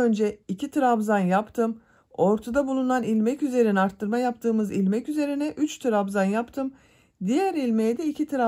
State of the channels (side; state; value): both; identical; correlation 1.00